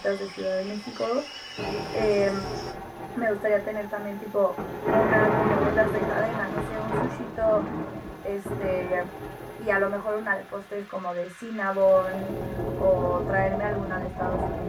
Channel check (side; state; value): both; identical; correlation 1.00